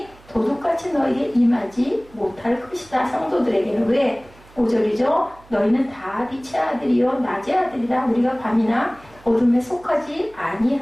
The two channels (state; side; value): noise; right; hum, 25 dB below the sound